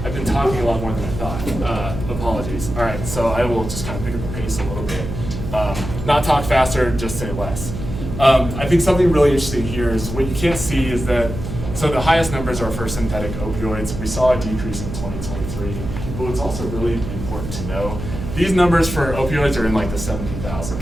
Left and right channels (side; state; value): right; noise; hum, 7 dB below the sound